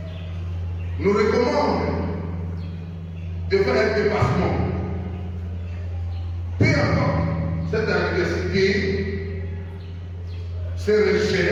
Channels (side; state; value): both; identical; correlation 1.00